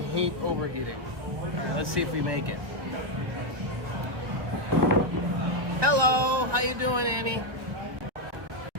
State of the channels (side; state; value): left; late; 1.1 ms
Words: overheating. All right, let's see if we make it. Hello, how you doing, Annie?